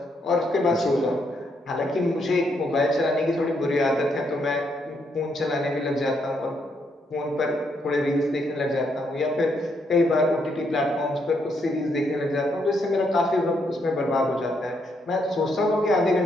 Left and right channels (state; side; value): normal; both; correlation 0.76